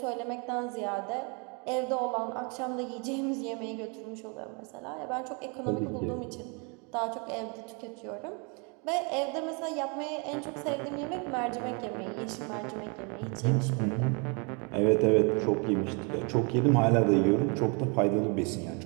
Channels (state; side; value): quieter; left; 33.3 dB